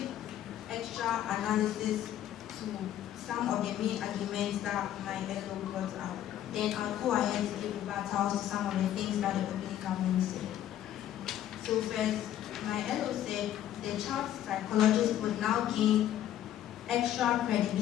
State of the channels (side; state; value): right; quieter; 11.7 dB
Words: extra analysis to some of the main arguments that my fellow brought out. Then I'll go ahead to give rebuttals to some of the things that the opening government said. So first, my fellow said the child psychologist would now gain extra